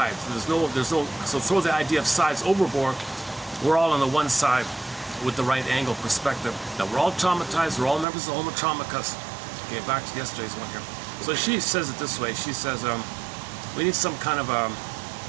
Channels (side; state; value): left; drops out; at 8.1 s